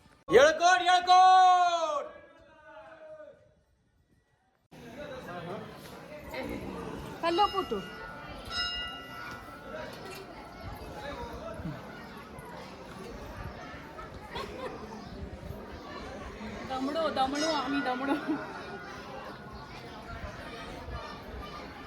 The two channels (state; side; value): identical; both; correlation 1.00